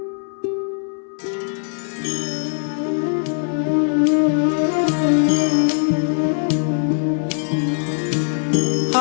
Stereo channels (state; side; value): silent; right; 63 dB below the other